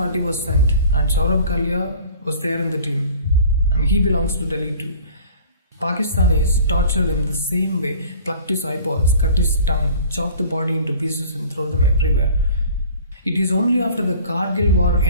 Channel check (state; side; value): inverted; both; correlation -0.47